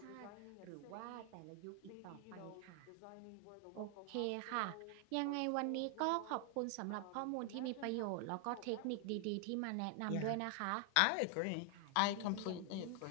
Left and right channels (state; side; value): different; both; correlation 0.00